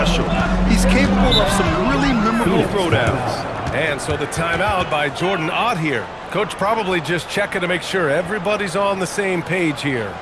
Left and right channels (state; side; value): identical; both; correlation 1.00